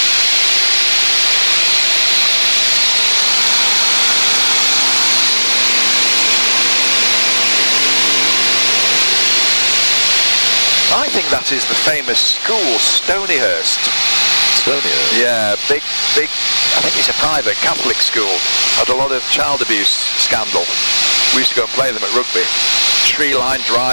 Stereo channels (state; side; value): inverted; both; correlation -1.00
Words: I think that is the famous school, Stonyhurst. Stonyhurst? Yeah, big, I think it's a private Catholic school. Had a lot of child abuse scandal. We used to go and play them at rugby. Tree-lined